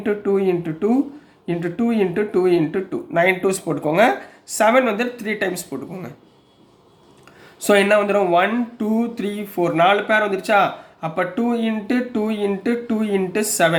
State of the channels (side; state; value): both; identical; correlation 1.00